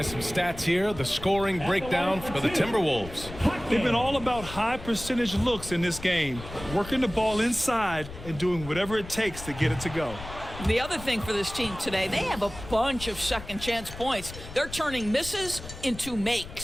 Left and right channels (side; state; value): left; noise; rumble, 13 dB below the sound